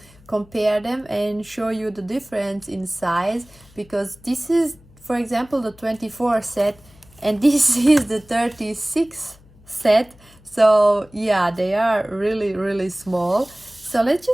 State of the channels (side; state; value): left; noise; hum, 26 dB below the sound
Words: compare them and show you the difference in size, because this is, for example, the 24 set and this is the 36 set. So yeah, they are really small. So let's